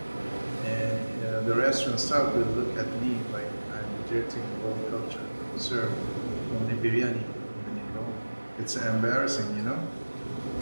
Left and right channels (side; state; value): both; inverted; correlation -1.00